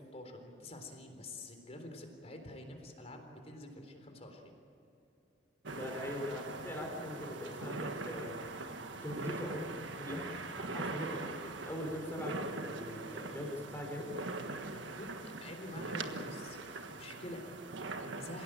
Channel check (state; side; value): normal; both; correlation 0.34